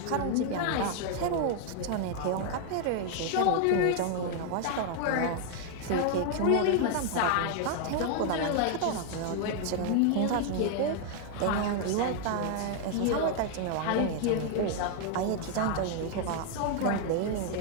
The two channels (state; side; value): different; both; correlation 0.00